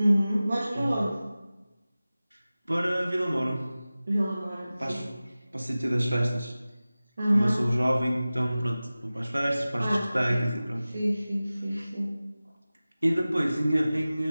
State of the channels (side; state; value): both; inverted; correlation -0.97